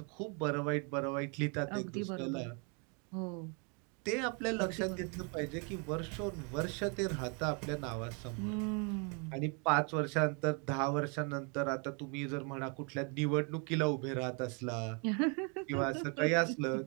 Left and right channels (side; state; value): left; quieter; 35.7 dB